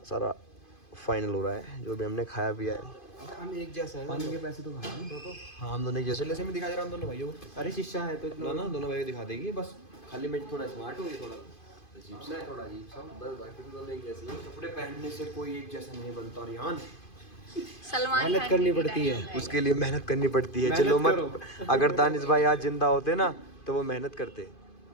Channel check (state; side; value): late; right; 2.5 ms